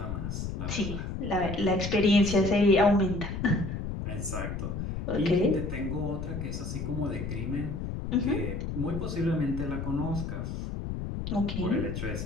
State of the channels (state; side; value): noise; left; rumble, 5 dB below the sound